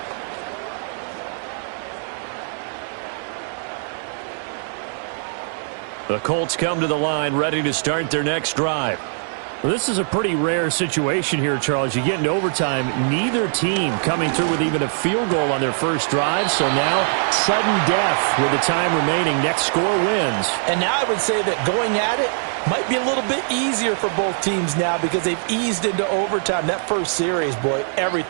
The Colts come to the line ready to start their next drive. Well, this is a pretty rare situation here, Charles. You get into overtime, neither team coming through with even a field goal on their first drive. So now, sudden death with the time remaining. Next score wins. And now I would say that going at it might be a little bit easier for both teams now because they've eased into overtime. That first series, boy,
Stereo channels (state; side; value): silent; left; digital silence